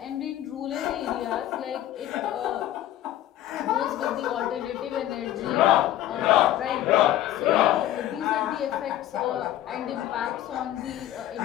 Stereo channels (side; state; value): right; quieter; 13.0 dB